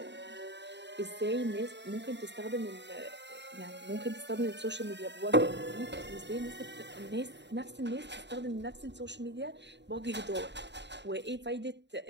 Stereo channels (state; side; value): late; left; 0.51 ms